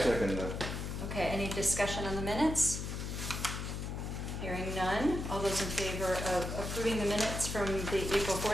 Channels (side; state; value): left; noise; hum, 4 dB below the sound